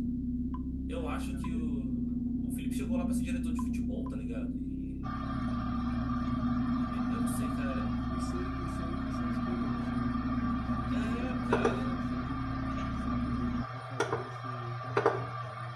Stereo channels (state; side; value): identical; both; correlation 1.00